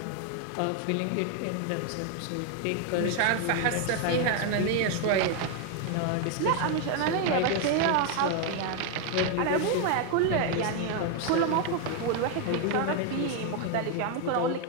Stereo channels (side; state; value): both; different; correlation 0.01